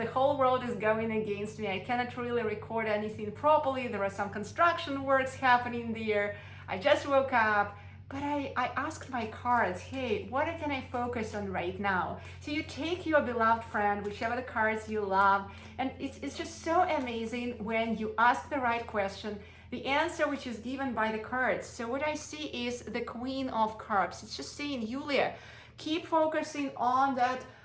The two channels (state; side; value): identical; both; correlation 1.00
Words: whole world is going against me. I cannot really record anything properly. There are some construction works happening there. I just woke up. But I asked my cards, hey, what can I focus on right now? So you take your beloved friend, whichever the cards you love, and it's just so amazing when you ask the right question, the answer which is given by the cards. So what I see is the Queen of Cups. It's just saying, Yulia, keep focusing on that